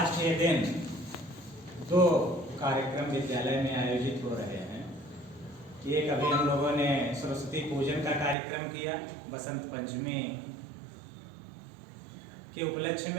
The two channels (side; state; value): left; drops out; at 8.3 s